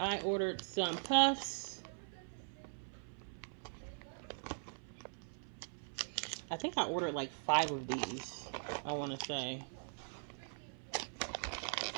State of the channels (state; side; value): silent; left; 50 dB below the other